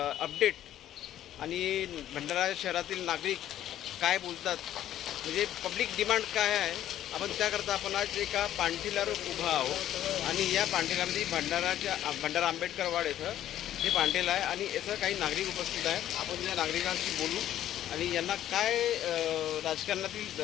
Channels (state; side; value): quieter; right; 12.0 dB